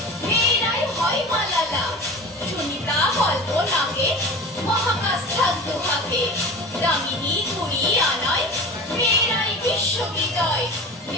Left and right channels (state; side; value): normal; both; correlation 0.33